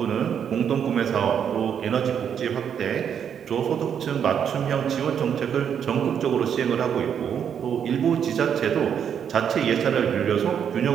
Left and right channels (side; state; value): left; quieter; 8.2 dB